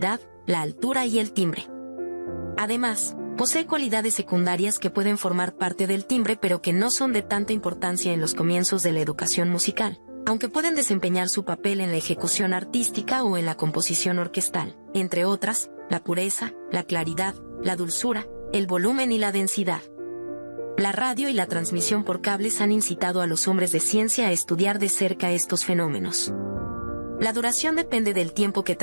la altura y el timbre. Además, posee cualidades secundarias que pueden formar parte del timbre pero que no son de tanta importancia en los comienzos de la educación musical, aunque pueden desempeñar su papel en la ejecución artística o en la composición orquestal, entre otras, la pureza, la claridad, la dulzura, el volumen y la densidad. La radio y la transmisión por cables han incitado a los hombres de ciencia a estudiar de cerca estos fenómenos. La duración depende del tiempo que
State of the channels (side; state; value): both; inverted; correlation -1.00